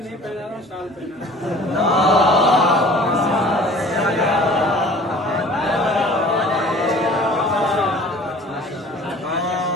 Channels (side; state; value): both; normal; correlation 0.48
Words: पहना रहा, शाल पहना।